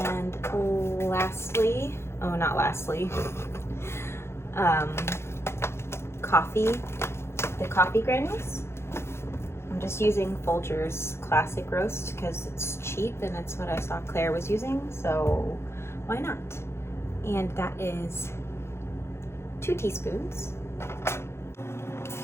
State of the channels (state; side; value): late; right; 0.12 ms